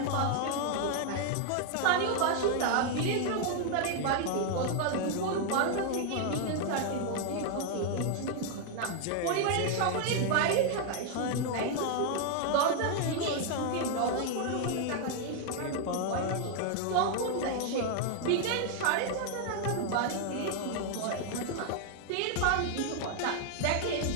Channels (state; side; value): different; both; correlation 0.00